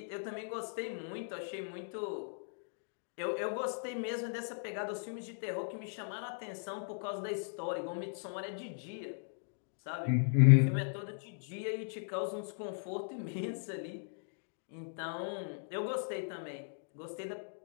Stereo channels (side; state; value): right; silent; digital silence